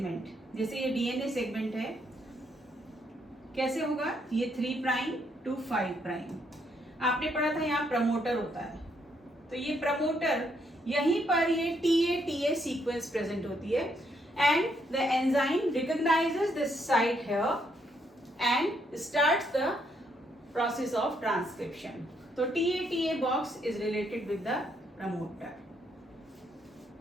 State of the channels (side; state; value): both; normal; correlation 0.74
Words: जैसे ये DNA segment है, कैसे होगा? ये 3 prime to 5 prime. आपने पढ़ा था यहाँ प्रमोटर होता है, तो ये प्रमोटर यहीं पर ये TATA sequence present होती है, and the enzyme recognizes this site here and starts the process of transcription. So TATA box is related with the promoter.